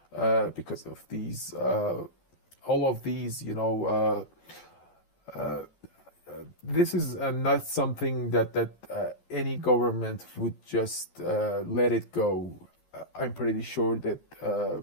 because of these all of these this is not something that any government would just let it go. I'm pretty sure that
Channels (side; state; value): right; late; 12 ms